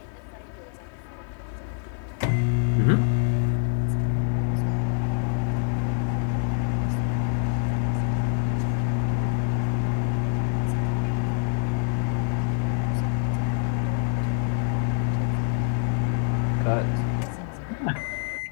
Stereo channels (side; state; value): right; silent; 61 dB below the other